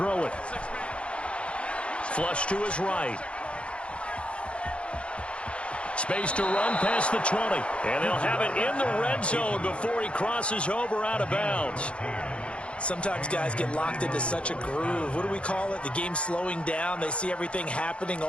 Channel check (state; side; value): late; right; 0.060 ms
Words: it. Flush to his right. Space to run past the 20. And they'll have it in the red zone before he crosses over out of bounds. Sometimes guys get locked into such a groove. What do we call it? The game slowing down. They see everything happening